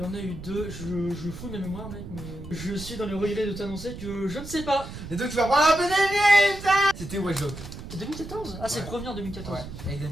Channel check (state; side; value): noise; right; rumble, 11 dB below the sound